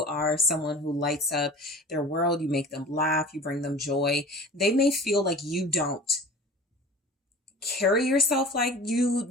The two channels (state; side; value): normal; both; correlation 0.40